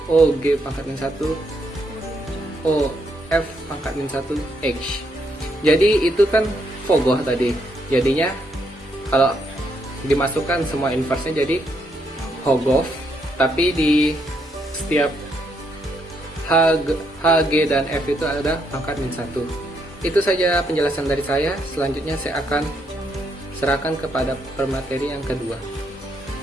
OG pangkat min 1 OF pangkat min 1x. Jadi itu kan fogoh tadi. Jadinya kalau dimasukkan semua inverse-nya jadi Hogof, tapi di setiap HG dan F itu ada pangkat min 1. Itu saja penjelasan dari saya. Selanjutnya saya akan serahkan kepada pemateri yang kedua.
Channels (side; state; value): both; normal; correlation 0.75